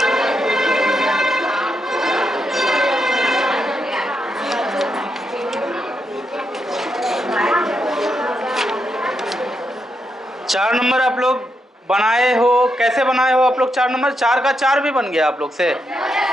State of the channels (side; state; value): both; normal; correlation 0.82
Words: चार नंबर आप लोग बनाए हो? कैसे बनाए हो आप लोग 4 नंबर? 4 का 4 भी बन गया आप लोग से?